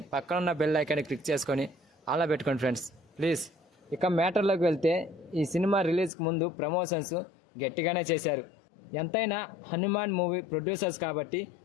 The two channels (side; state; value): right; drops out; at 6.1 s